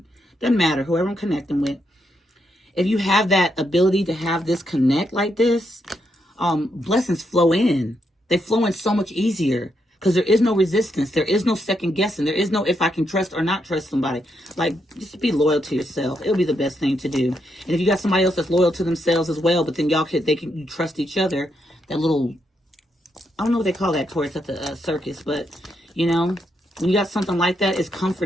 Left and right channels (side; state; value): both; normal; correlation 0.80